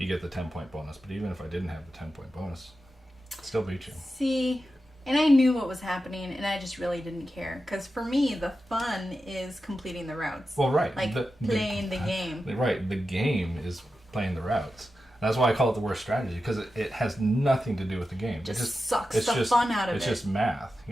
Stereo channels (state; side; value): normal; both; correlation 0.91